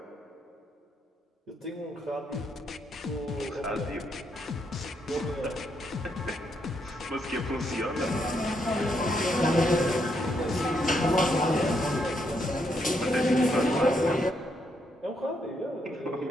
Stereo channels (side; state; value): both; normal; correlation 0.77